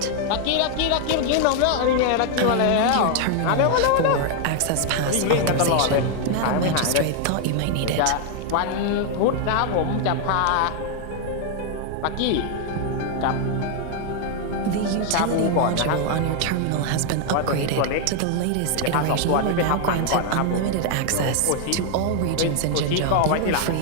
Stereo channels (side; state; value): both; different; correlation 0.00